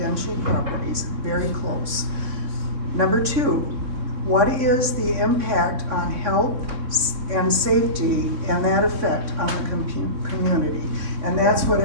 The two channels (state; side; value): late; left; 3.6 ms